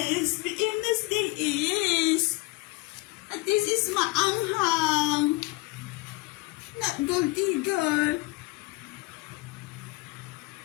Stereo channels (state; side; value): quieter; right; 22.3 dB